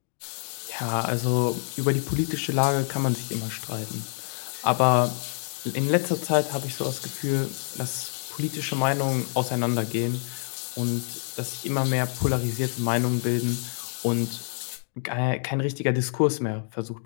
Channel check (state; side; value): silent; right; digital silence